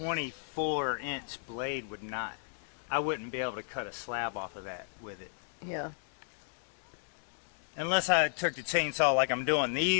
blade would not. I wouldn't be able to cut a slab off of that with it. Yeah. Unless I took the chainsaw like I'm doing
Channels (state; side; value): silent; right; digital silence